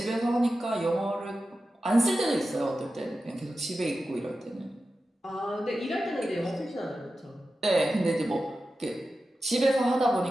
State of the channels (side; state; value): both; normal; correlation 0.93